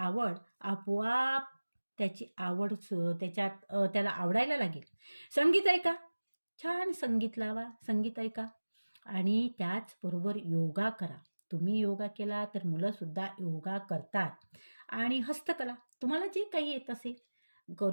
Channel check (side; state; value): both; inverted; correlation -1.00